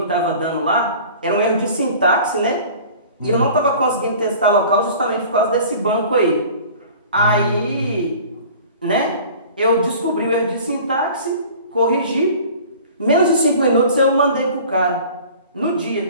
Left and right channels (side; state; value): both; inverted; correlation -0.44